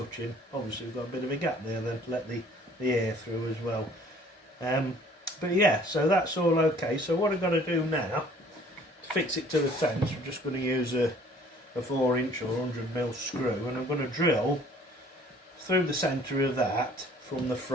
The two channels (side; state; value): both; normal; correlation 0.55